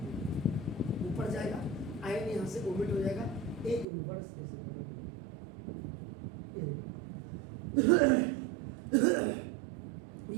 ऊपर जाएगा, आई एन यहाँ से ओमिट हो जाएगा, ए इनवर्स इज इक्वल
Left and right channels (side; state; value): left; drops out; at 3.9 s